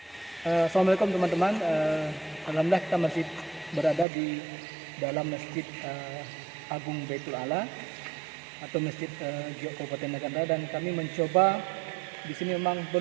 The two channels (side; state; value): left; drops out; at 4.0 s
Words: teman-teman. Alhamdulillah kita masih berada di dalam Masjid Agung Baitul Ala atau Masjid Giok Kabupaten Naganda, dan kami mencoba di sini. Memang